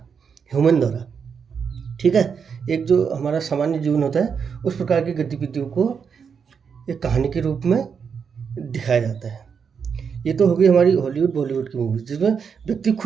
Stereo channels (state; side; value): quieter; left; 6.5 dB